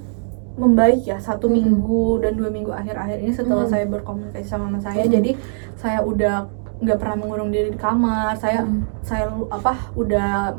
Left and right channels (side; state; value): left; silent; digital silence